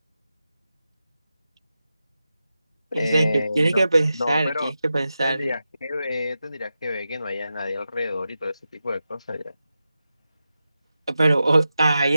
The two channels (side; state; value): both; inverted; correlation -0.91